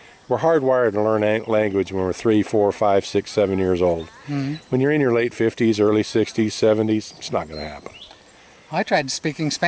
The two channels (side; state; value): both; identical; correlation 1.00